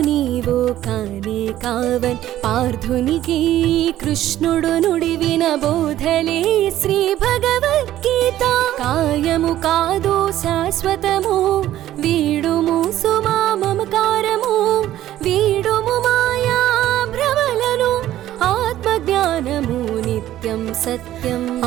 నీవు కానే కావన్ పార్థునికి కృష్ణుడు నుడివిన బోధలే శ్రీ భగవద్గీత కాయము కాదు శాశ్వతము వీడుము సుమా మమకారము వీడుము మాయా భ్రమలను ఆత్మజ్ఞానము నిత్యం సత్యం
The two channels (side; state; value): left; quieter; 13.3 dB